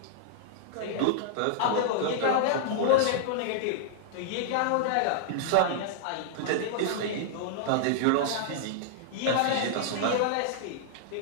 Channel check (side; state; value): both; different; correlation -0.01